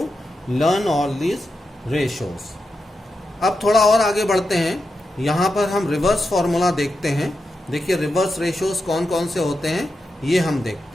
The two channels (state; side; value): normal; both; correlation 0.88